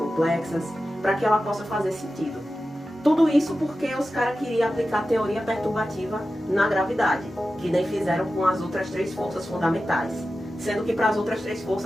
para que ela possa fazer sentido. Tudo isso porque os caras queriam aplicar a teoria perturbativa na gravidade, que nem fizeram com as outras três forças fundamentais. Sendo que para as outras três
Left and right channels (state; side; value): normal; both; correlation 0.93